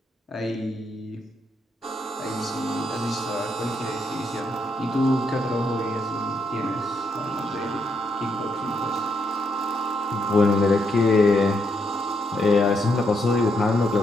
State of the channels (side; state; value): both; normal; correlation 0.77